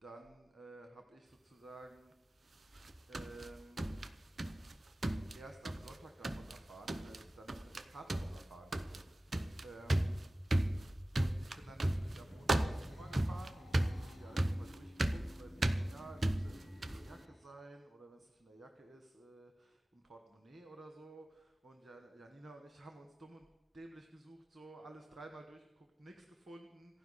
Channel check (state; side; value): normal; both; correlation 0.97